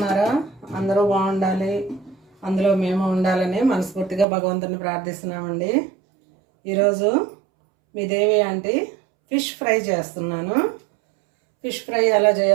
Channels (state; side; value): drops out; left; at 4.2 s